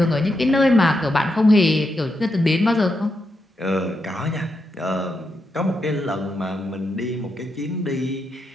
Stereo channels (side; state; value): both; normal; correlation 0.84